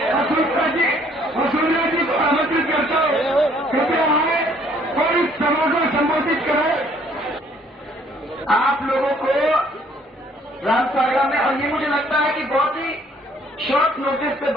वसुंधरा जी को आमंत्रित करता हूँ, कृपया आए और इस सभा को संबोधित करें। आप लोगों को रामसागरा में, और ये मुझे लगता है कि बहुत ही शॉर्ट नोटिस पे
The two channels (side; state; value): both; normal; correlation 0.62